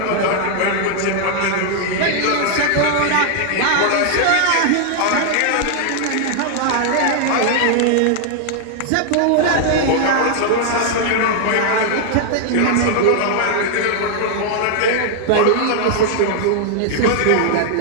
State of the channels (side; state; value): both; different; correlation 0.00